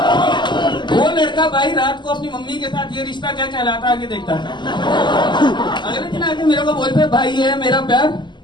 वो लड़का भाई रात को अपनी मम्मी के साथ ये रिश्ता क्या कहलाता आगे देखता था। अगर आगे मेरे को बोलते भाई ये है मेरा प्यार,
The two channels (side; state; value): right; late; 0.22 ms